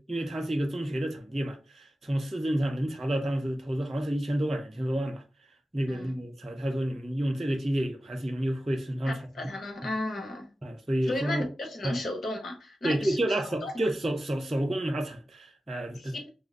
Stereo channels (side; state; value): both; normal; correlation 0.94